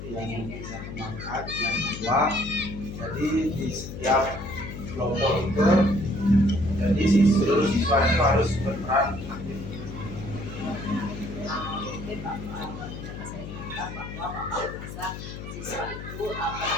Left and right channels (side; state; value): left; noise; hum, 10 dB below the sound